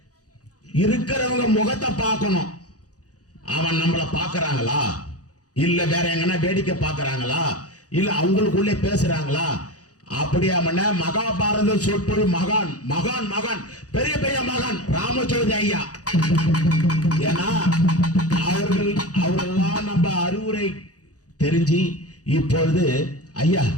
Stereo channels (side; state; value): right; late; 0.67 ms